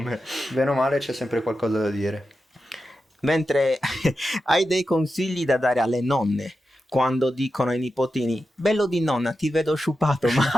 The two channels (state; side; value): normal; both; correlation 0.90